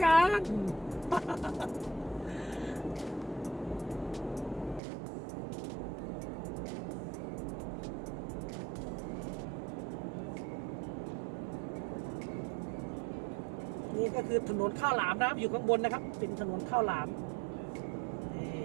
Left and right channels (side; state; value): left; drops out; at 4.8 s